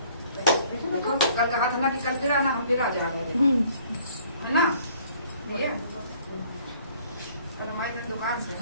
कल कहा था ना कि कल फिर आना, हम फिर आ जा रहे हैं, है ना। ये कल हमारी दुकान से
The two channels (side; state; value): both; inverted; correlation -0.58